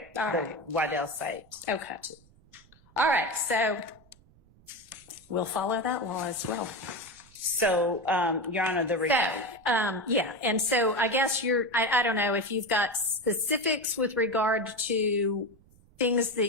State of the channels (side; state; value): right; noise; rumble, 28 dB below the sound